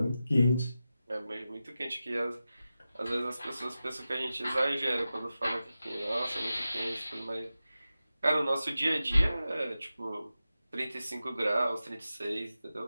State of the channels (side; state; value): both; inverted; correlation -0.93